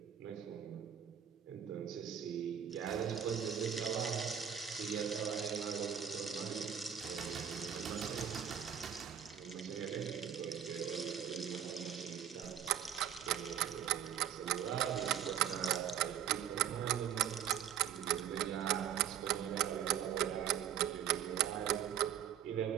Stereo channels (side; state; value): left; quieter; 9.0 dB